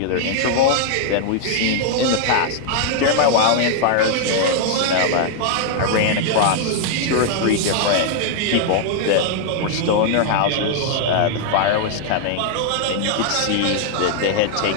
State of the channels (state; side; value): different; both; correlation 0.00